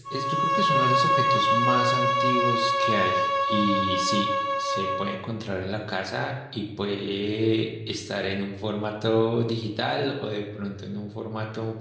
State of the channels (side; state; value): both; identical; correlation 1.00